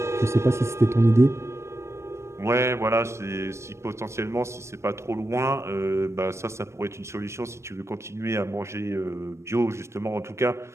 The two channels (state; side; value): late; left; 0.13 ms